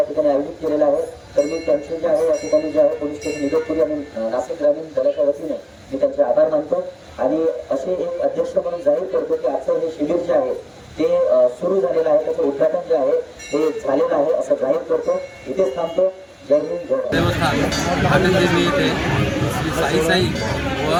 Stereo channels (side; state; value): both; identical; correlation 1.00